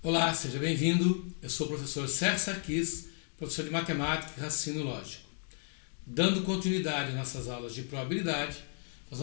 Olá, seja bem-vindo. Eu sou o professor Sérgio Sarquis, professor de Matemática e Raciocínio Lógico. Dando continuidade às nossas aulas de probabilidade, nós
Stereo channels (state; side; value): silent; right; 56 dB below the other